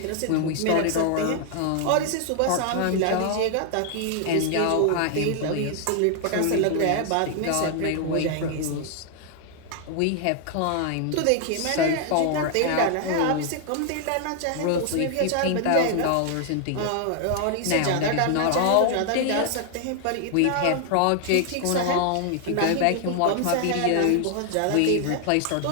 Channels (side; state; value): both; different; correlation 0.00